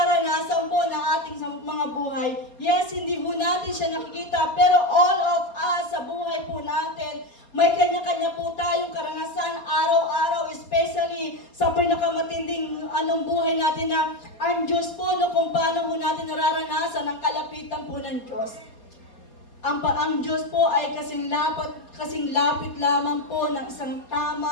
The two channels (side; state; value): right; late; 4.3 ms